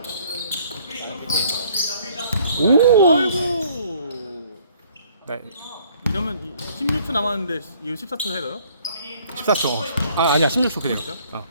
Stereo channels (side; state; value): both; inverted; correlation -0.60